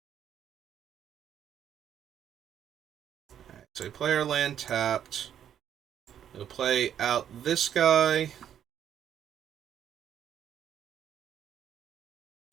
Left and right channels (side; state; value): left; quieter; 9.6 dB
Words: Alright, so player land tapped. We'll play out this guy.